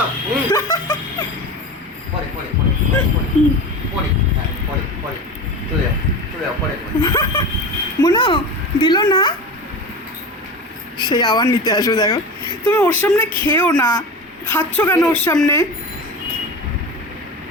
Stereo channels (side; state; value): both; normal; correlation 0.29